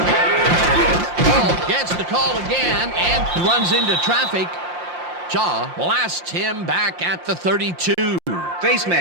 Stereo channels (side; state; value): left; late; 5.7 ms